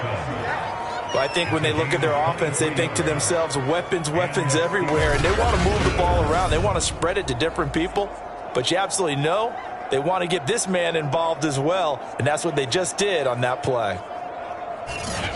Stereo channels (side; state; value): both; identical; correlation 1.00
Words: Well, I think when they look at their offense, they think to themselves, weapons, weapons everywhere, and they want to move the ball around. They want to spread it to different people, but you absolutely know they want to get this man involved as well, and that's what they just did on that play.